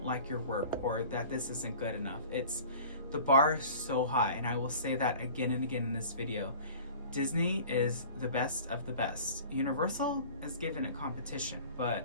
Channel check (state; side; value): inverted; both; correlation -0.43